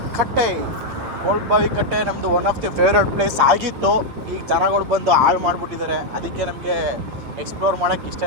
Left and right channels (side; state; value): left; late; 8.8 ms